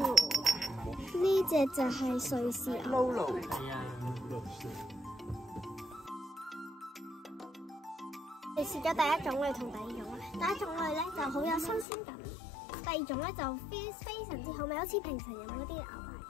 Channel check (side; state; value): right; drops out; at 11.9 s